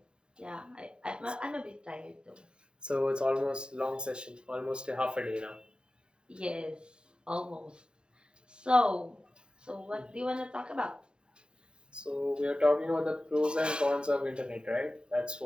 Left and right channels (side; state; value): left; late; 0.050 ms